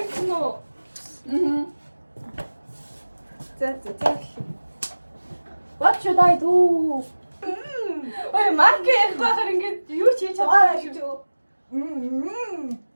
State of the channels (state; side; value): inverted; both; correlation -1.00